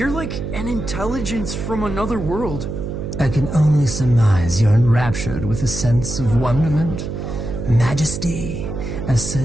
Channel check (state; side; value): noise; right; hum, 5 dB below the sound